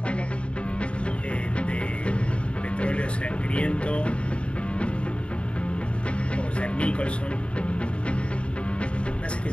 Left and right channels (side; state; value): right; late; 0.058 ms